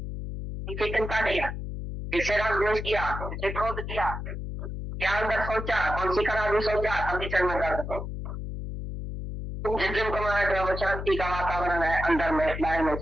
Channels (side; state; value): left; noise; hum, 6 dB below the sound